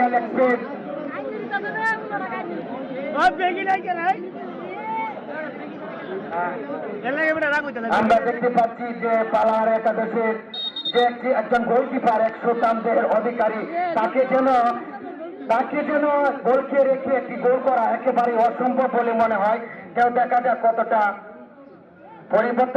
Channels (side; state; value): both; identical; correlation 1.00